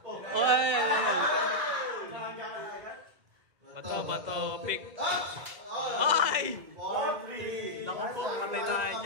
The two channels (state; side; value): late; left; 1.7 ms